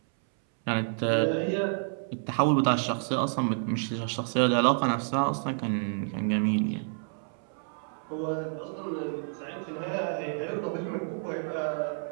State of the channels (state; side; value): silent; left; 58 dB below the other